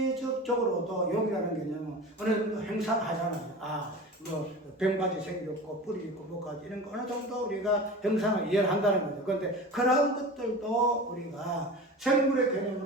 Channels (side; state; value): both; normal; correlation 0.33